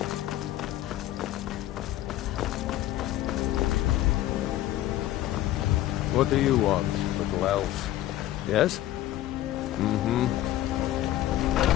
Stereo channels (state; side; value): quieter; right; 14.1 dB